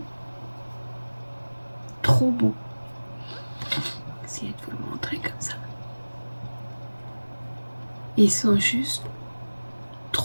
trop beaux. Je vais essayer de vous le montrer comme ça. Ils sont juste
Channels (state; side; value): inverted; both; correlation -1.00